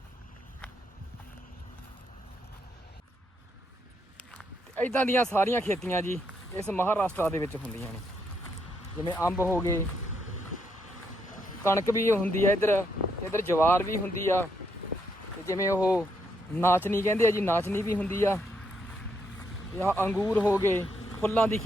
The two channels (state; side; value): normal; both; correlation 0.77